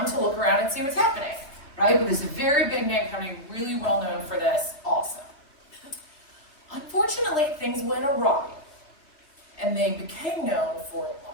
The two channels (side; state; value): right; late; 3.3 ms